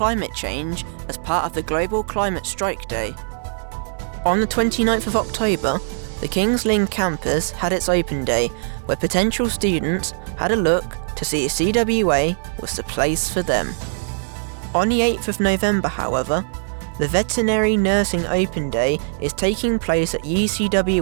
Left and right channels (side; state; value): left; silent; 63 dB below the other